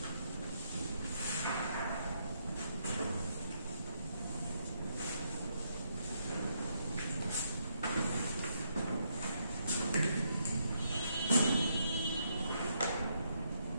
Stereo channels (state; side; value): inverted; both; correlation -0.77